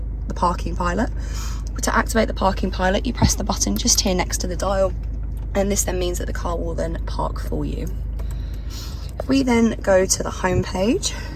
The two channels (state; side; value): identical; both; correlation 1.00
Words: parking pilot. To activate the parking pilot, you press the button just here next to the dial, and this then means that the car will then park for you. If we then go to the home page,